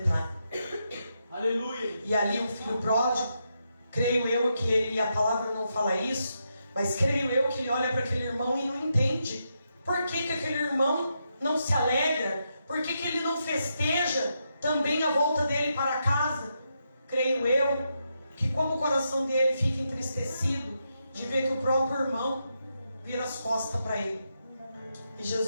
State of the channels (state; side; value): inverted; both; correlation -0.83